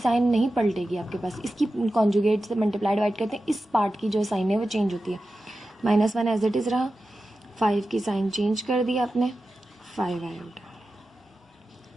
नहीं पलटेगी आपके पास, इसकी कॉन्जुगेट से मल्टीप्लाई डिवाइड करते हैं, इस पार्ट की जो साइन है वो चेंज होती है। -1 एज इट इज़ रहा, 5 की साइन चेंज कर दी आपने, 5 आयोटा।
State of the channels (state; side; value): normal; both; correlation 0.93